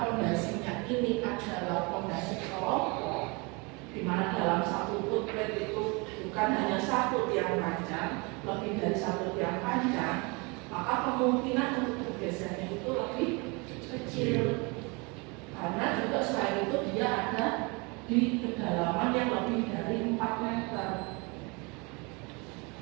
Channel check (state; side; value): quieter; left; 28.9 dB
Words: fondasinya ini adalah fondasi kelompok, di mana dalam satu footplate itu bukan hanya satu tiang panjang, lebih dari satu tiang panjang, maka kemungkinan untuk bergesernya itu lebih kecil. Karena juga selain itu dia ada di kedalaman yang lebih dari 4 meter.